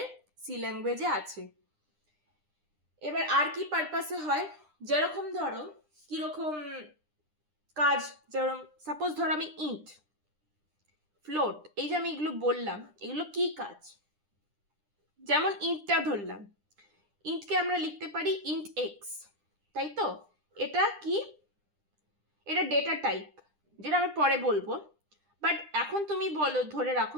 সি ল্যাঙ্গুয়েজে আছে। এবার আর কি পারপাসে হয়, যেরকম ধরো কিরকম কাজ, যেরকম সাপোজ ধরো আমি ইন্ট, ফ্লোট, এই যে আমি এগুলো বললাম, এগুলো কি কাজ? যেমন ইন্টটা ধরলাম, ইন্টকে আমরা লিখতে পারি ইন্ট এক্স, তাই তো? এটা কি? এটা ডেটা টাইপ, যেটা আমি পরে বলবো, বাট এখন তুমি বলো, ধরে রাখো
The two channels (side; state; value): left; late; 9.9 ms